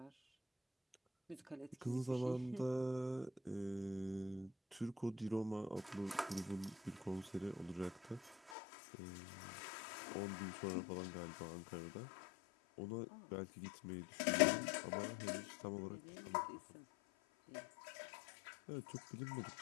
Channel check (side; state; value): right; drops out; at 8.6 s